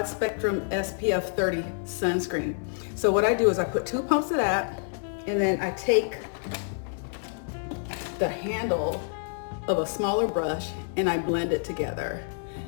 spectrum SPF 30 sunscreen. So what I do is I put 2 pumps of that, and then I take the handle of a smaller brush and I blend it together.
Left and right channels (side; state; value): right; silent; 60 dB below the other